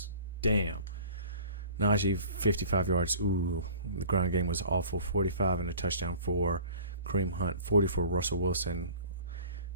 Damn. Najee, 55 yards. Ooh, the ground game was awful. 45 and a touchdown for Kareem Hunt, 40 for Russell Wilson,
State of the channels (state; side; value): inverted; both; correlation -0.44